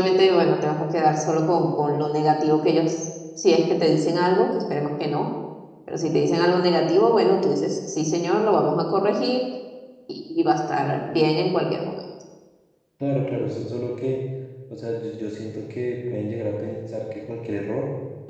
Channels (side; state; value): both; identical; correlation 1.00